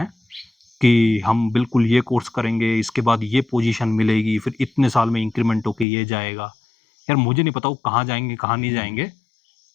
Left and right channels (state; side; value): drops out; right; at 5.9 s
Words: कि हम बिल्कुल ये कोर्स करेंगे, इसके बाद ये पोजीशन मिलेगी, फिर इतने साल में इंक्रीमेंट होके ये जाएगा, यार मुझे नहीं पता वो कहाँ जाएंगे कहाँ नहीं जाएंगे।